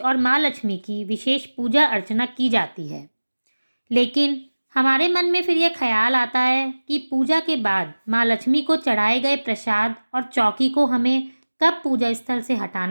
माँ लक्ष्मी की विशेष पूजा अर्चना की जाती है, लेकिन हमारे मन में फिर यह ख्याल आता है कि पूजा के बाद माँ लक्ष्मी को चढ़ाए गए प्रसाद और चौकी को हमें कब पूजा स्थल से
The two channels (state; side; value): inverted; both; correlation -1.00